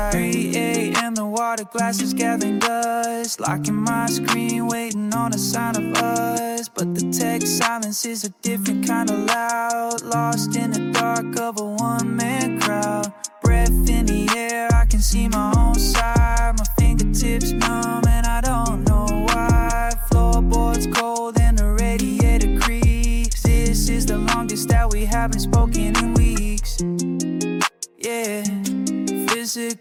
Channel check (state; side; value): identical; both; correlation 1.00